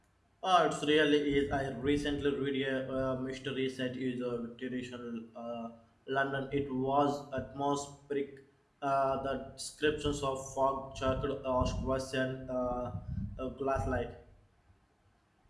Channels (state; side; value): identical; both; correlation 1.00